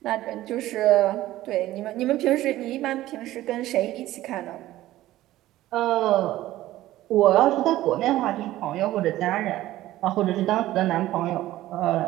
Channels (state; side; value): quieter; left; 15.3 dB